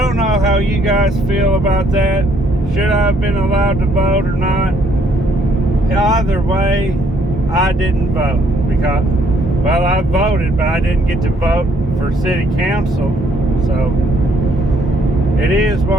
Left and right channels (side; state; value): both; normal; correlation 0.67